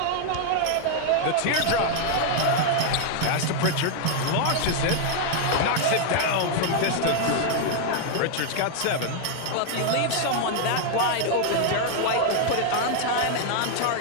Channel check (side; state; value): both; different; correlation 0.00